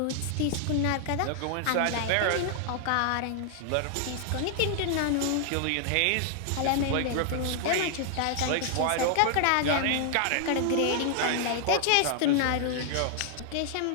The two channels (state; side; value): different; both; correlation 0.00